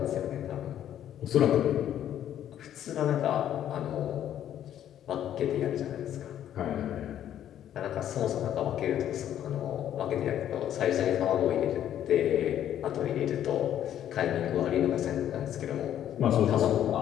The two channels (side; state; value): right; quieter; 10.8 dB